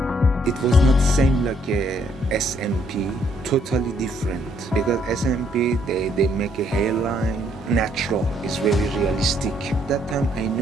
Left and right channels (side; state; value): both; normal; correlation 0.69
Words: It was not same like a SMP, totally different. Because SMP, they make a hairline natural, it's very realistic. That time I